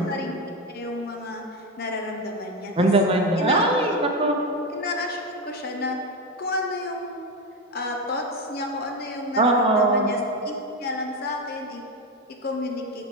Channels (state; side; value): normal; both; correlation 0.15